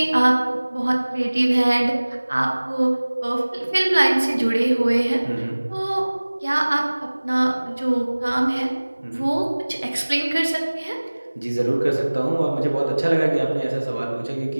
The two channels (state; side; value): inverted; both; correlation -1.00